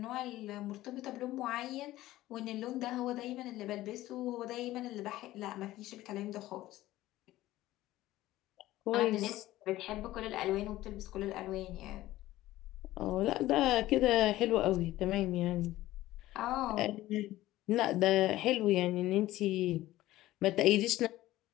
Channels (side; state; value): right; quieter; 15.9 dB